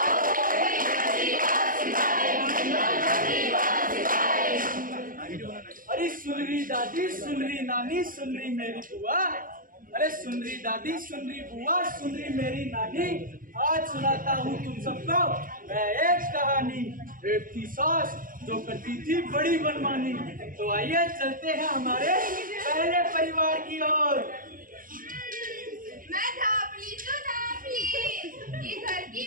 अरे सुन रही दादी, सुन रही नानी, सुन रही मेरी बुआ, अरे सुन रही दादी, सुन रही बुआ, सुन रही मेरी नानी, आज सुनाता हूँ तुम सबको मैं एक कहानी। एक थी सास जो करती थी बड़ी मनमानी। तो आइए चलते हैं हमारे पहले परिवार की ओर। मैं धापली तो धापली, ये घर की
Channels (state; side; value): late; left; 0.40 ms